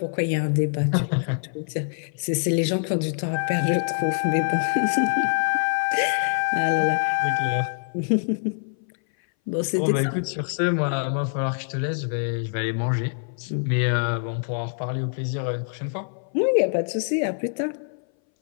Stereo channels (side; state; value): right; silent; 59 dB below the other